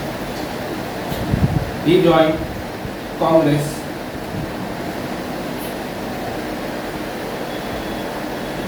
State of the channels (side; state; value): both; identical; correlation 1.00